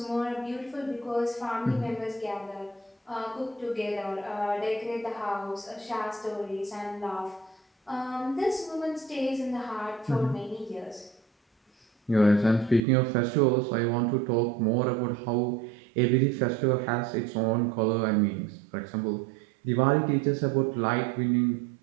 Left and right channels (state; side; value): drops out; left; at 12.8 s